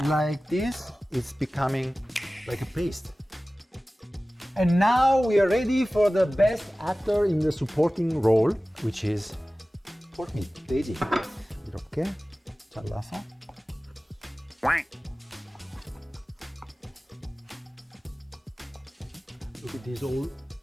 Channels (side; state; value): both; normal; correlation 0.97